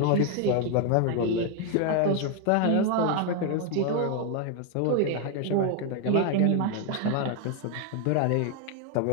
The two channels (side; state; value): both; different; correlation 0.01